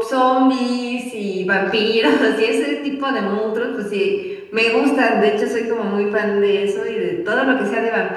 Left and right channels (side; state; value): both; identical; correlation 1.00